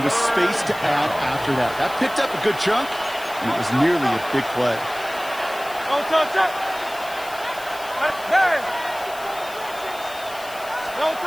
with space to add after that. That picked up a good chunk, and it was nearly a big play.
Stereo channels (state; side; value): noise; left; hiss, 17 dB below the sound